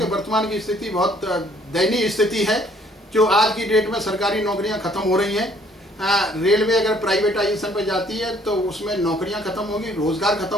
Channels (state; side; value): normal; both; correlation 0.61